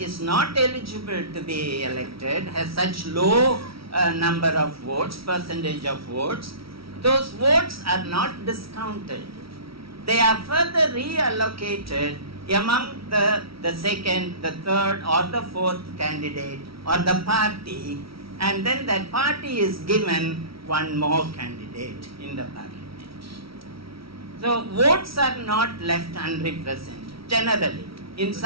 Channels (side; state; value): left; late; 0.75 ms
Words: is not eligible to be elected has such low number of votes, percentage of votes, those votes are not discounted. They are further reallocated among the second, the third or the fourth candidate or the party, and then that party is given one more candidate in the parliament. So votes are not left unrepresented generally. In